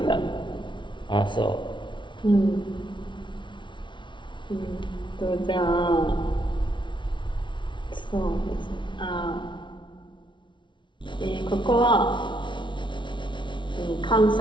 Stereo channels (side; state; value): right; late; 0.24 ms